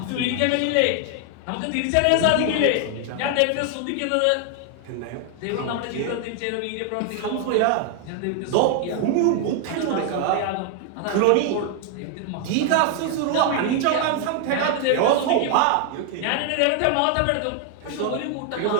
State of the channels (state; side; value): different; both; correlation 0.00